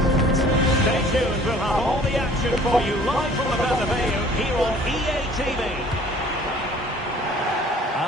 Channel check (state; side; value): normal; both; correlation 0.52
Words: Stay tuned, we'll have all the action for you live from the Bernabeu here on EA TV.